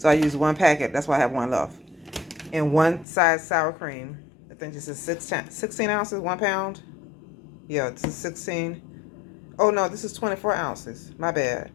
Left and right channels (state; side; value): drops out; right; at 3.1 s